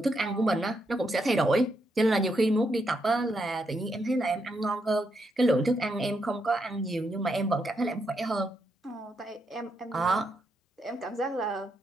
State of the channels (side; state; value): both; normal; correlation 0.80